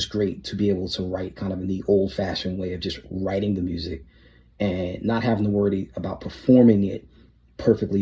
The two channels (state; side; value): identical; both; correlation 1.00